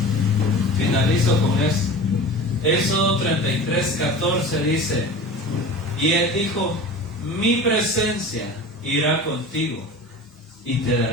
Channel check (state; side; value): normal; both; correlation 0.35